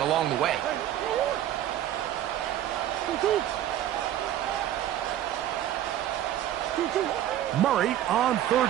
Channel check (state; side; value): quieter; left; 12.0 dB